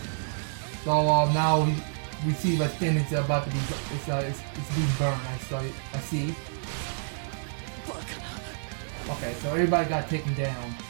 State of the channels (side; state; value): left; silent; digital silence